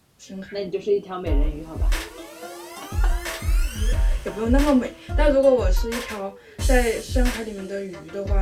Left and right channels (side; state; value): both; identical; correlation 1.00